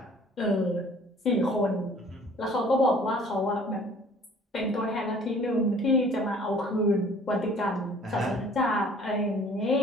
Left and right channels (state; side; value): normal; both; correlation 0.53